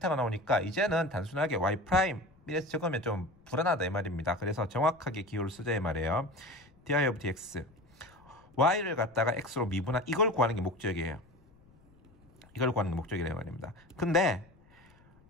나오니까 이제는 단순하게 y' 이래서 적으면 좀 불안하다 이 말입니다. 그래서 정확하게 기호를 쓰자 이 말이에요. di of dx y를 갖다가 x로 미분한 이걸 구하는 게 목적이에요. 이걸 구하는 게 목적이라 말입니다. 근데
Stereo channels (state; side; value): noise; left; rumble, 28 dB below the sound